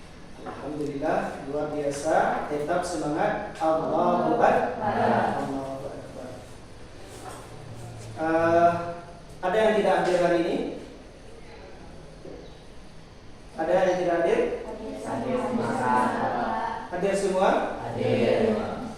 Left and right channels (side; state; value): both; identical; correlation 1.00